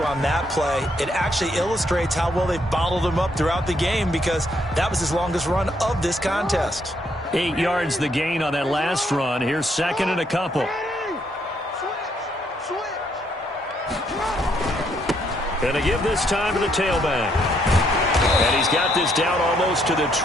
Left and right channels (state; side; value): normal; both; correlation 0.72